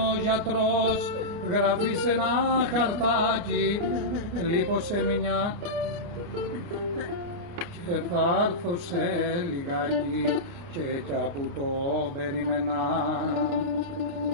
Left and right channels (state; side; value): late; left; 29 ms